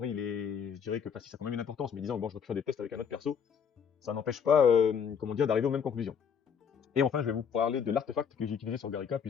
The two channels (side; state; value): right; quieter; 7.1 dB